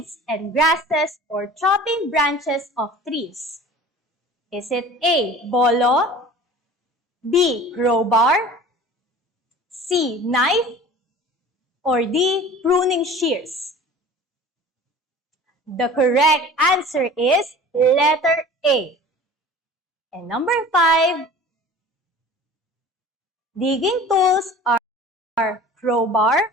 and grasses or chopping branches of trees. Is it A, bolo, B, crowbar, C, knife, or D, pruning shears? The correct answer is letter A. And number 5, digging tools are crowbar,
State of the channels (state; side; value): normal; both; correlation 0.42